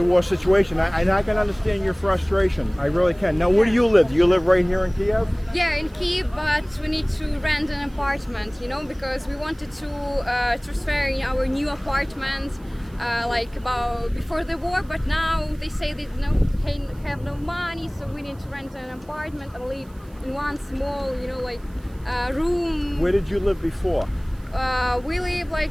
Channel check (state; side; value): noise; right; hiss, 29 dB below the sound